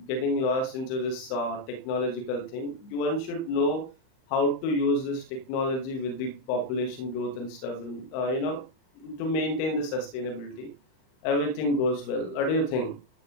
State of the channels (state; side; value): late; right; 38 ms